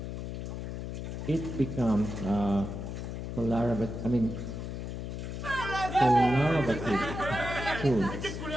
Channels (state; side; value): noise; left; hum, 5 dB below the sound